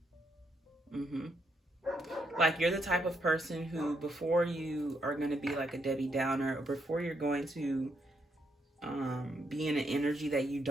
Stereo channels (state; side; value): normal; both; correlation 0.77